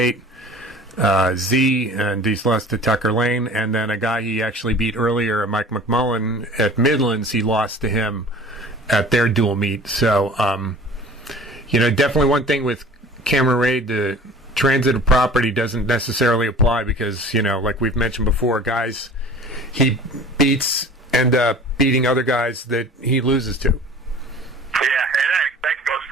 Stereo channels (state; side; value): normal; both; correlation 0.44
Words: Z, and he's lost to Tucker Lane, and then a guy he actually beat earlier, Mike McMullen, at Midlands, he lost to him at their dual meet. So, you know, definitely one thing with Cameron Wade, the transitive property doesn't necessarily apply because, you know, like we've mentioned before, guys he beats end up beating other guys that he loses to. Yeah, and that goes